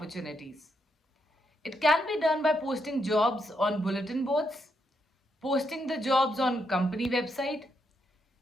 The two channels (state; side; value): normal; both; correlation 0.79